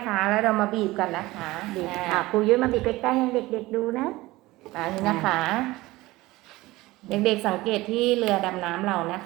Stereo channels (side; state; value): left; quieter; 19.3 dB